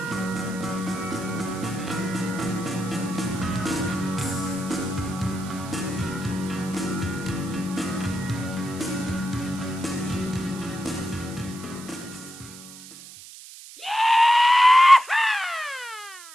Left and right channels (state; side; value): noise; right; hiss, 16 dB below the sound